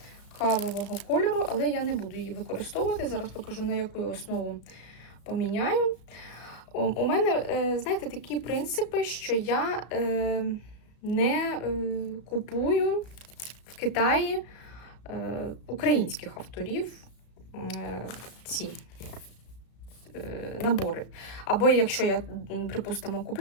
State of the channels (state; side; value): late; right; 34 ms